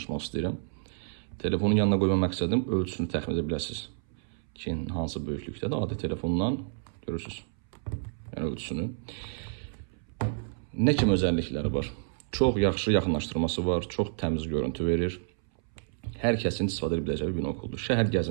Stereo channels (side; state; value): left; silent; 58 dB below the other